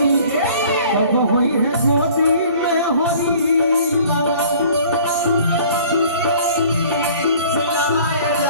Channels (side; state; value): both; inverted; correlation -0.51